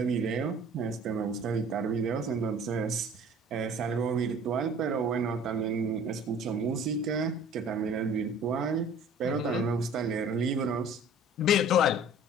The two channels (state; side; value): normal; both; correlation 0.48